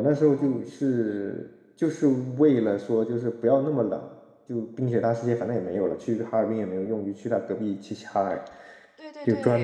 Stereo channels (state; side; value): identical; both; correlation 1.00